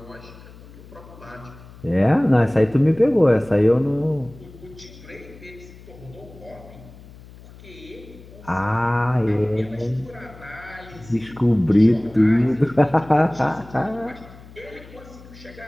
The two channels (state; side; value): noise; left; hum, 20 dB below the sound